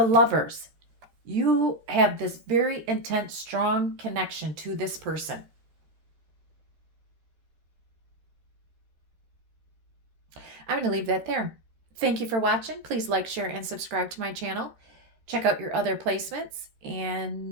lovers. You have this very intense, strong connection to this person. I'm going to leave that there. Thank you for watching. Please like, share, and subscribe to my channel. Check out your other placements,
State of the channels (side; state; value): left; late; 13 ms